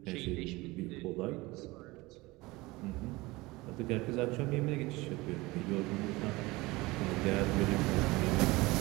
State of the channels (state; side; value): quieter; left; 21.7 dB